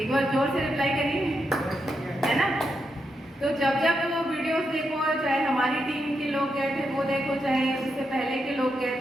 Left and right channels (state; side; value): normal; both; correlation 0.83